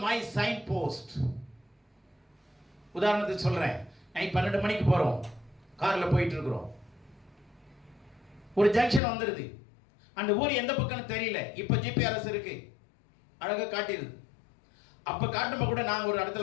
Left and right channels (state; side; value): drops out; right; at 9.0 s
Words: my sign post. உதாரணத்துக்கு சொல்றேன். நைட் 12 மணிக்கு போறோம், கார்ல போயிட்டு இருக்கிறோம். ஒரு ஜங்ஷன் வந்துருது. அந்த ஊர் எந்த பக்கம்னு தெரியல. இப்ப ஜிபிஆர்எஸ் இருக்கு, அழகா காட்டிடுது. அப்ப காட்டும்போது கூட நாங்க ஒரு